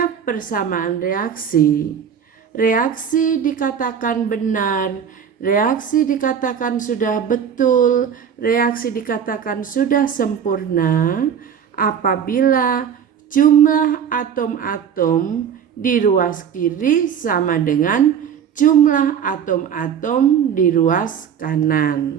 persamaan reaksi, reaksi dikatakan benar, reaksi dikatakan sudah betul, reaksi dikatakan sudah sempurna apabila jumlah atom-atom di ruas kiri sama dengan jumlah atom-atom di ruas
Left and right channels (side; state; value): left; quieter; 7.9 dB